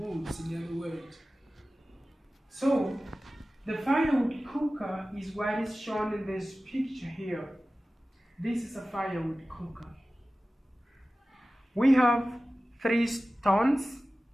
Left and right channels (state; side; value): normal; both; correlation 0.96